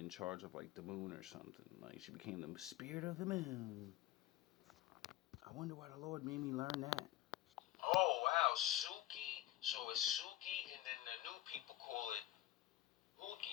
charge of like the moon or something. Like she became the spirit of the moon. I wonder why the Lord made me learn that. Oh, wow, Suki. So it's Suki, and then the new people call it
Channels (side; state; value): right; quieter; 15.1 dB